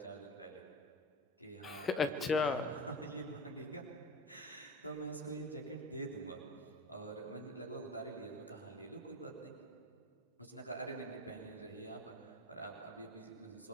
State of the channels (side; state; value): both; normal; correlation 0.30